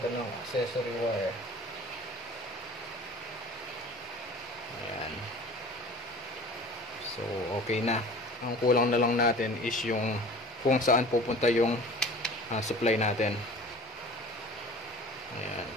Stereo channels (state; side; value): normal; both; correlation 0.42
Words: ng accessory wire. Ayan. So, okay na. Ang kulang na lang natin is yung kung saan pupunta yung supply natin. Ayan.